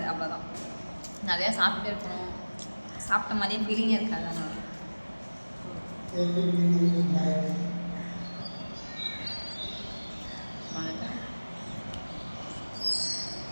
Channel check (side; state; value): both; inverted; correlation -1.00